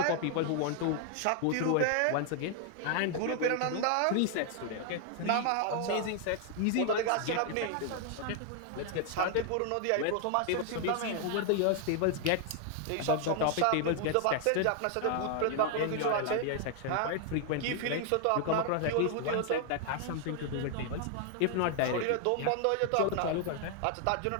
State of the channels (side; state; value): both; different; correlation 0.00